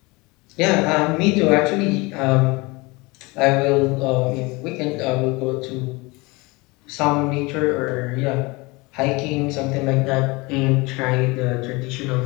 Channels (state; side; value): quieter; right; 24.8 dB